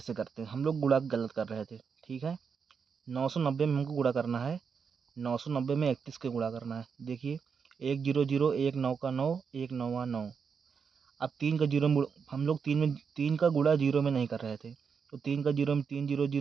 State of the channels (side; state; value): left; quieter; 6.2 dB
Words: करते हैं, हम लोग गुणा गलत कर रहे थे। ठीक है, 990 में हमको गुणा करना है, 990 में 31 के गुणा करना है। देखिए 1 0 0, 1 9 का 9, 1 9 9। अब 3 का जीरो, हम लोग 3 का गुणा जीरो में नहीं कर रहे थे, तो 3 का जीरो में 3 0